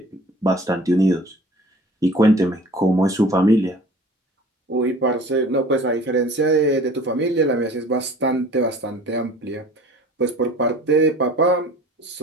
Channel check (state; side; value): normal; both; correlation 0.45